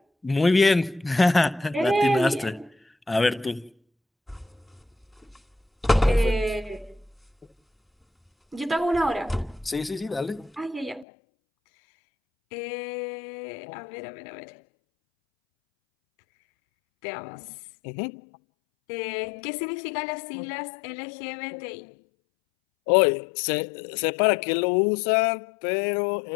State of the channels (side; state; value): right; drops out; at 11.1 s